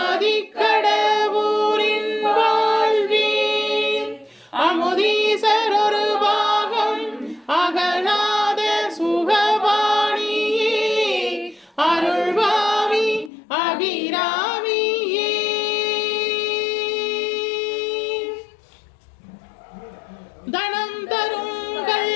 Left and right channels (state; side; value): drops out; right; at 13.3 s